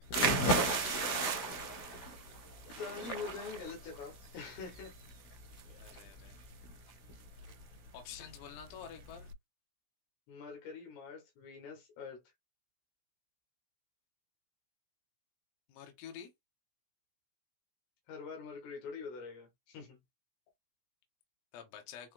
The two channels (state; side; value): late; right; 16 ms